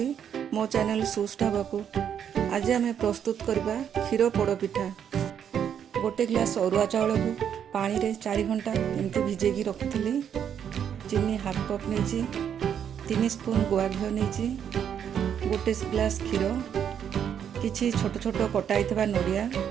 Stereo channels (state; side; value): quieter; left; 8.6 dB